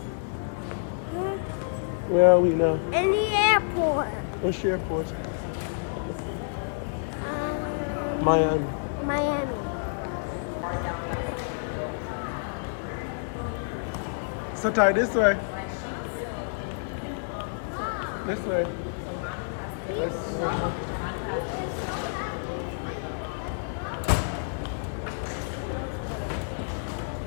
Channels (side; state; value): right; silent; 59 dB below the other